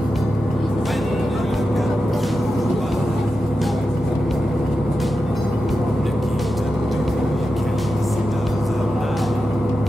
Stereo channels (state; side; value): normal; both; correlation 0.90